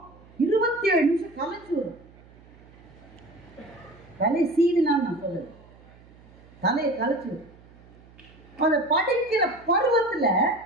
27 நிமிஷம் கலைச்சு வரும். தலை சீவினான்னு நான் சொல்லுது, தலையை கலைச்சு வரும். அந்த படிக்கிற பருவத்துல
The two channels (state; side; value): noise; right; hum, 24 dB below the sound